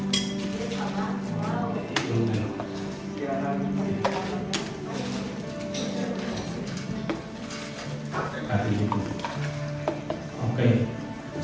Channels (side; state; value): both; identical; correlation 1.00